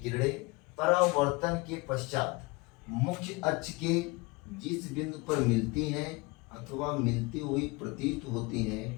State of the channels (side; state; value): right; quieter; 25.3 dB